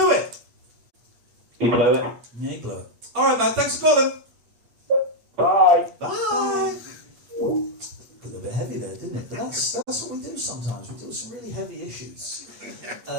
it. He blew it. Yeah, he blew it. All right, man, thanks for calling. Bye. Bye. Got a bit heavy there, didn't it? But that's what we do sometimes. We deal with some really heavy issues.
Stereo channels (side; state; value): left; late; 8.4 ms